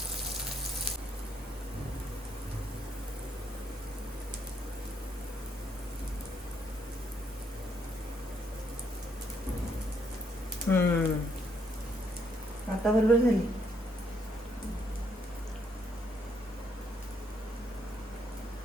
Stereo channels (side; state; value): both; normal; correlation 0.72